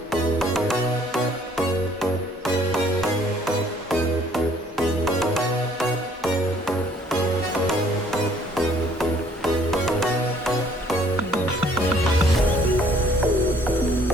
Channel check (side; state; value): both; normal; correlation 0.60